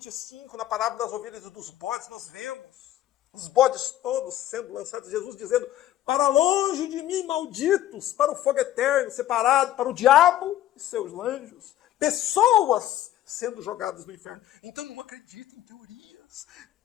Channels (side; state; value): right; quieter; 12.9 dB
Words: na parábola das ovelhas e dos bodes, nós vemos os bodes todos sendo lançados, Jesus dizendo: para longe de mim, malditos, para o fogo eterno, separado para o diabo e seus anjos. Pessoas sendo jogadas no inferno. Então não acredite em teorias.